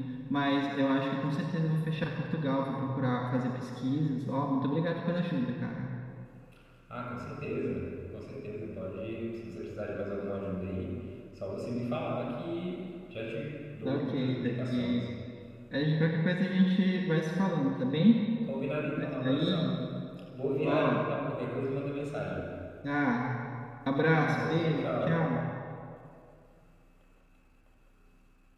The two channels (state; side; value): identical; both; correlation 1.00